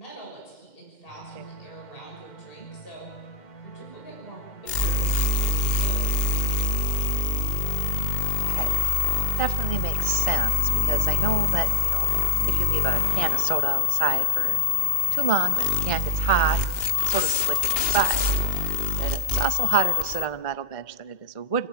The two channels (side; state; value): right; late; 2.1 ms